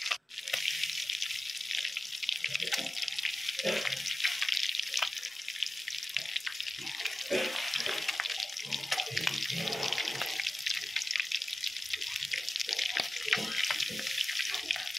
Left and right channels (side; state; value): both; normal; correlation 0.95